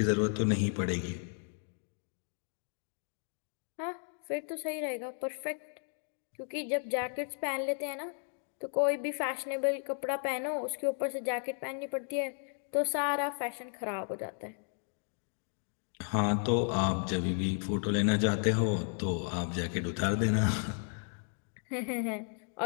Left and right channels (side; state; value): right; silent; 55 dB below the other